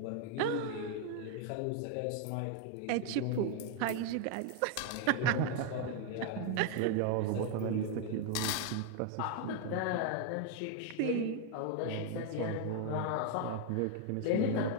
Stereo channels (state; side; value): different; both; correlation 0.00